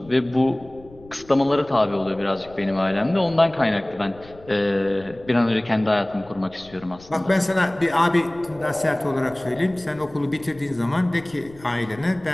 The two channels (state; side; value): noise; left; rumble, 23 dB below the sound